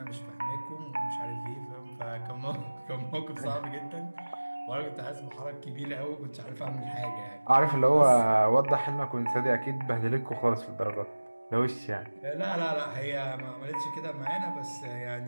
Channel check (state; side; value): inverted; both; correlation -1.00